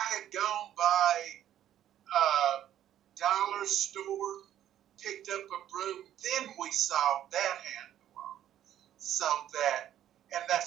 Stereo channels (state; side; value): quieter; left; 11.4 dB